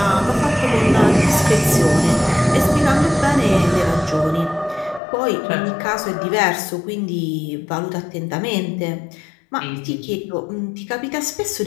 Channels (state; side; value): drops out; right; at 5.0 s